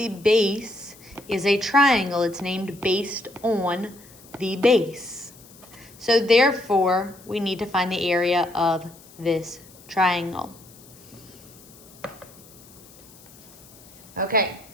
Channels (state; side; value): noise; left; hiss, 23 dB below the sound